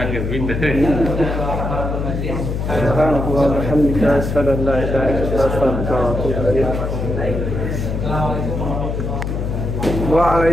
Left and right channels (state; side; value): noise; left; hum, 2 dB below the sound